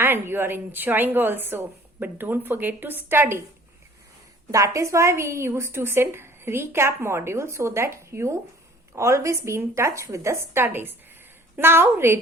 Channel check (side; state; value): both; normal; correlation 0.51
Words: you are enjoying also. But don't forget to study. That is why we used to send recap module so that you always be in touch with the studies. Now,